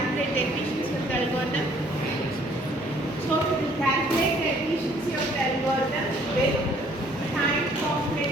the efficiency of the algorithm? So we will calculate the efficiency of the algorithm with time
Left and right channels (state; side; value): normal; both; correlation 0.61